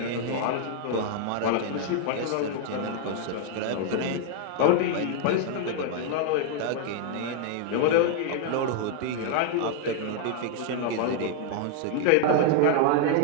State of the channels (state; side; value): different; both; correlation 0.00